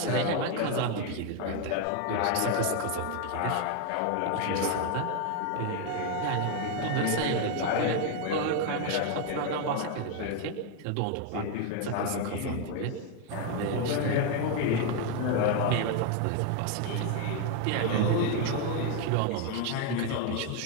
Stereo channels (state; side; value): different; both; correlation 0.01